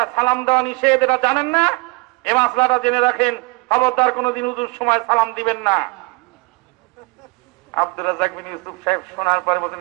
সালাম দেওয়া নিষেধ, এটা জানেন না? এই মাসলাটা জেনে রাখেন, খবরদার কোনদিন উজুর সময় সালাম দিবেন না। আব্দুর রাজ্জাক বিন ইউসুফ সাহেব শোনার পরে বলছেন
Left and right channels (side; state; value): left; quieter; 29.1 dB